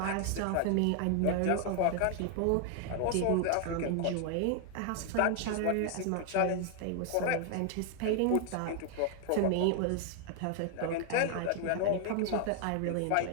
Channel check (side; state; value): both; different; correlation 0.00